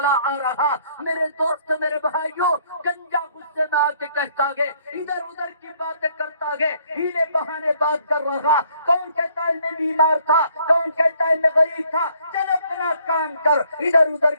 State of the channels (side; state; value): both; inverted; correlation -0.64